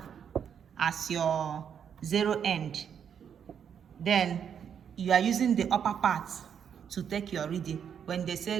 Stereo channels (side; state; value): left; quieter; 8.0 dB